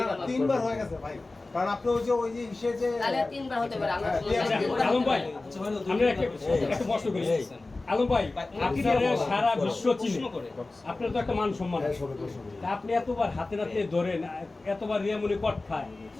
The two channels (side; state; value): right; quieter; 3.2 dB